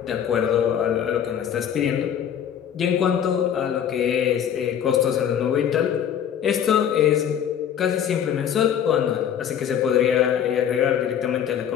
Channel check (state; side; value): quieter; right; 9.1 dB